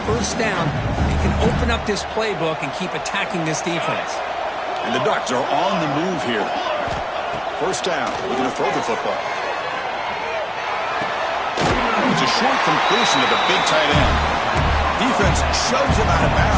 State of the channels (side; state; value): both; identical; correlation 1.00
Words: first down, they can open up this playbook and keep attacking this defense. And the Ducks are on the move here. First down, looking to throw the football. It's a short completion of the big tight end. Defense shoves him out of